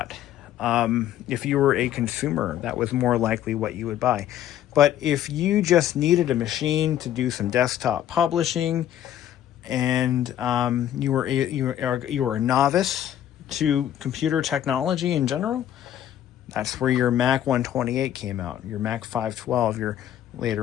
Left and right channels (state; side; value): quieter; right; 11.3 dB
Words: If you were a consumer, that was more likely what you would buy. But if you just needed a machine to do some desktop publishing, and you were a novice to computer technology in general, that's where your Mac 128 came out. Your Mac 512, your